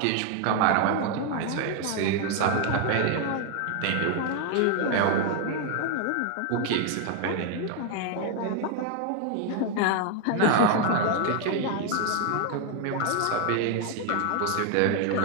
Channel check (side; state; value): both; different; correlation 0.00